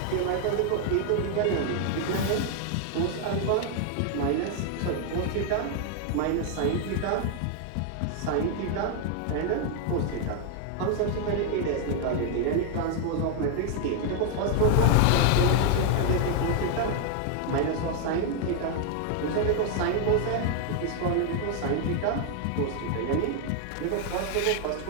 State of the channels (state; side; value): different; both; correlation 0.00